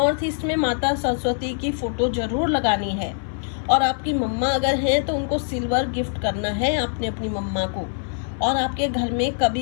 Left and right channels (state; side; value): silent; right; 63 dB below the other